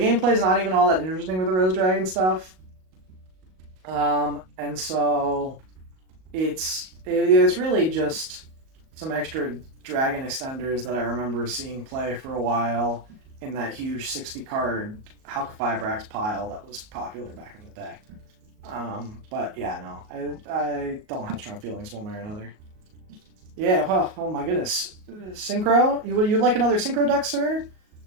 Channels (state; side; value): late; left; 38 ms